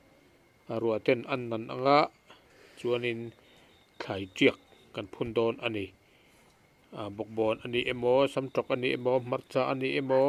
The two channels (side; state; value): both; identical; correlation 1.00